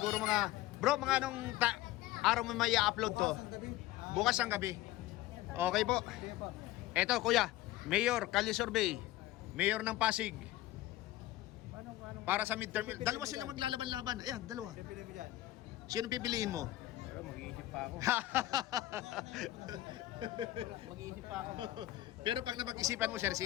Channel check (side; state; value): right; quieter; 15.9 dB